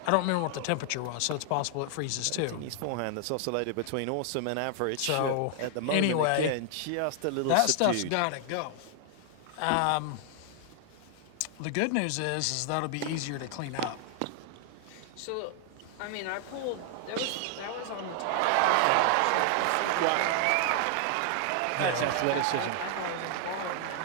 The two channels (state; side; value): different; both; correlation 0.00